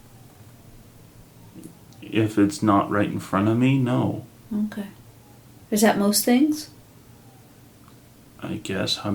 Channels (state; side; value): identical; both; correlation 1.00